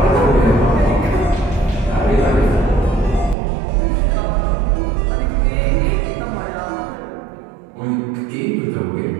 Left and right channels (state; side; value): drops out; left; at 3.4 s